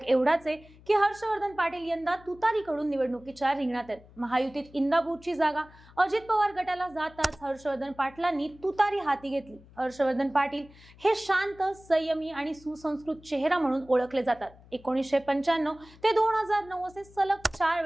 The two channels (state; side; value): noise; left; hum, 24 dB below the sound